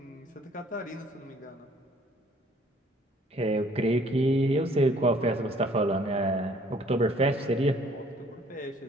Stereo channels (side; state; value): both; normal; correlation 0.59